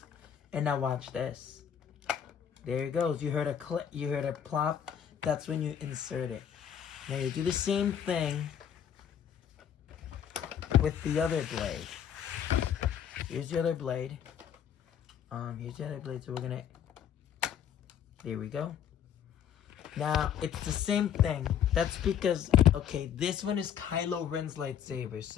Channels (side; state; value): right; quieter; 8.9 dB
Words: And now watch this. There it goes. You heard a click. You heard a plop. That's when you insert it. Now you do the same thing with the other blade. Here's the other blade. Here's the other blade. So we're gonna. There we go. Now it's the same thing. That's because, okay, this one is Kylo Ren's lightsaber.